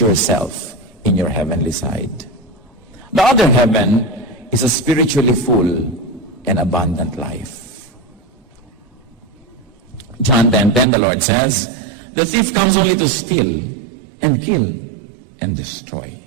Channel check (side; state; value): left; drops out; at 10.9 s